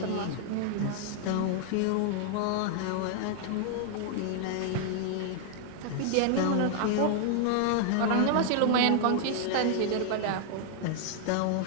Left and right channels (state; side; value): different; both; correlation 0.00